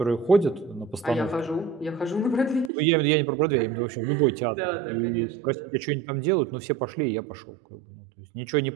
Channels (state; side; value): drops out; left; at 2.7 s